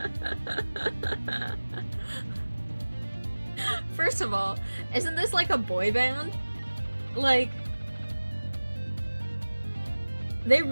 First of all, isn't this like a boy band? Like, they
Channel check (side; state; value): both; inverted; correlation -1.00